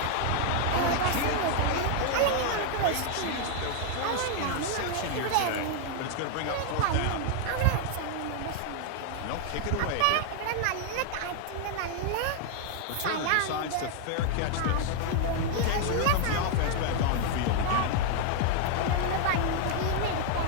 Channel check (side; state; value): both; different; correlation 0.00